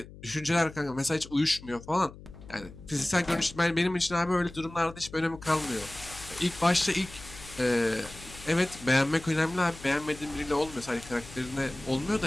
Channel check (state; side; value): noise; left; hum, 17 dB below the sound